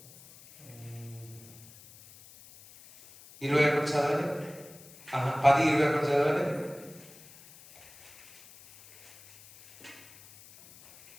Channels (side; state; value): left; noise; hiss, 22 dB below the sound